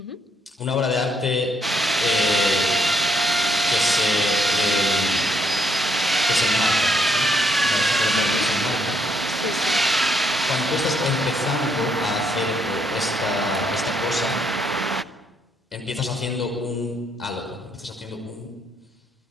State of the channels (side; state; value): both; normal; correlation 0.73